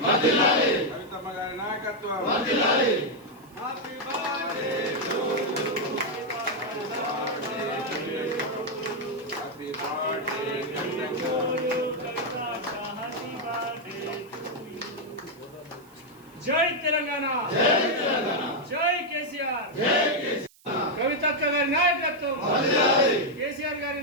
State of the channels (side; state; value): right; noise; hiss, 28 dB below the sound